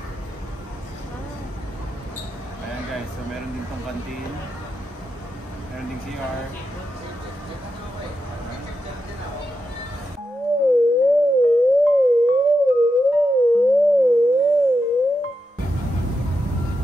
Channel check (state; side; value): normal; both; correlation 0.87